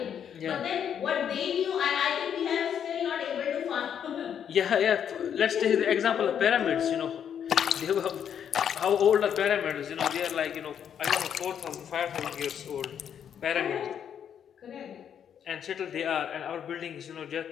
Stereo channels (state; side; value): quieter; right; 8.6 dB